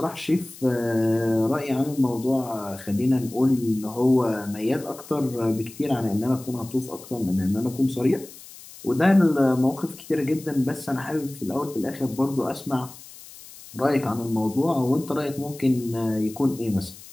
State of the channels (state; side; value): noise; left; hiss, 18 dB below the sound